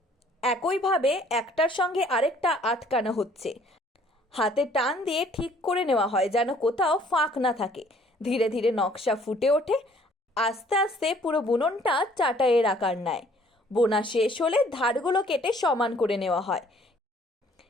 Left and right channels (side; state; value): both; normal; correlation 0.59